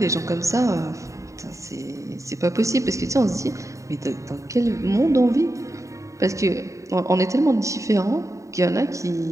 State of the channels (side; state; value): left; late; 0.15 ms